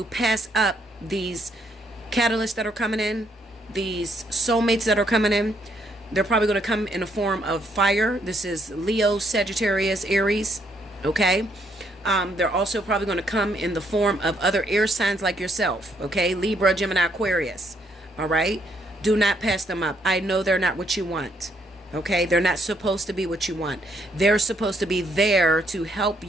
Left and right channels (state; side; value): normal; both; correlation 0.71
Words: pass up these catalysts that are coming in, these soulmates that are coming in. They're probably going to come in a form of fire. This is Leo, Sagittarius, Aries. Okay. They're also probably going to come in the form of other air signs like yourself. Okay. Libra, Gemini, Aquarius. All right. Do not pass them up. I know they're not what you want. Okay? They're not supposed to be what you want. They're supposed to be there to help